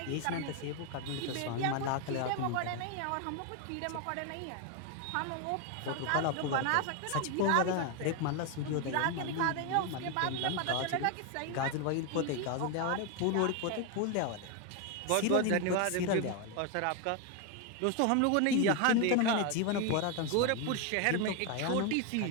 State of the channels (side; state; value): both; different; correlation 0.01